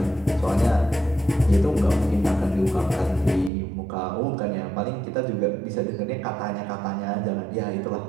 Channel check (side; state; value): left; drops out; at 3.5 s